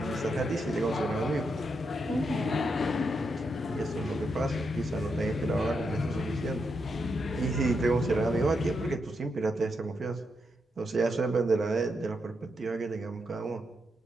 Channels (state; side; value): normal; both; correlation 0.82